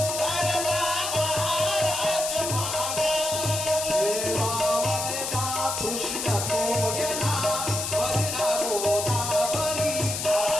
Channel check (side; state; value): left; noise; hiss, 3 dB below the sound